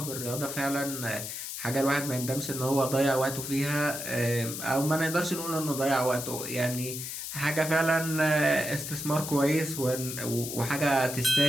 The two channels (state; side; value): noise; left; hiss, 6 dB below the sound